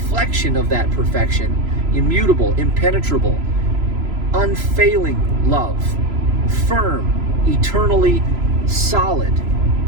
of that perfection, immutable, impenetrable, unfailing love, firm, eternally solid,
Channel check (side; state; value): left; late; 3.0 ms